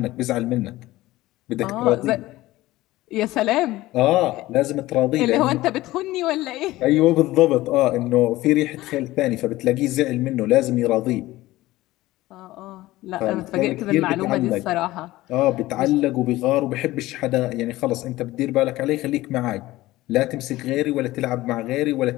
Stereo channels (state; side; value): quieter; right; 17.4 dB